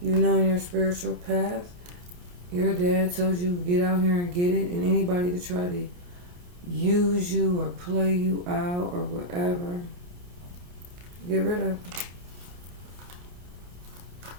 you know in your spiritual path, your dad told you get out here and get it. And anybody to try to use you or play you out or whatever, get rid of.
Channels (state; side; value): late; left; 28 ms